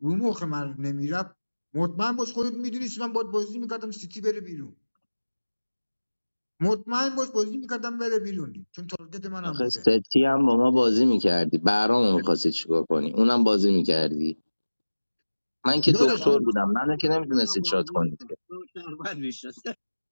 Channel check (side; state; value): both; inverted; correlation -1.00